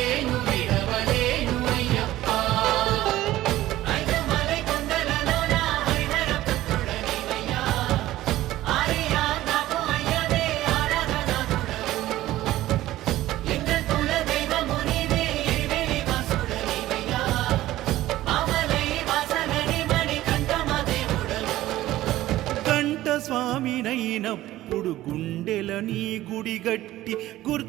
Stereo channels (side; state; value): left; quieter; 15.4 dB